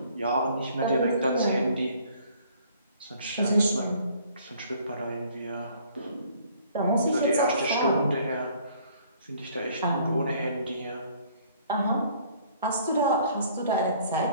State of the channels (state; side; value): inverted; both; correlation -0.58